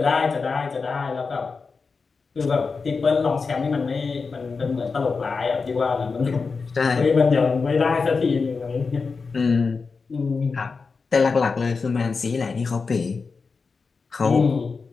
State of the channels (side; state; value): right; quieter; 4.7 dB